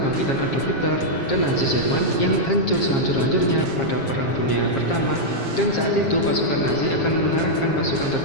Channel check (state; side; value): late; right; 7.4 ms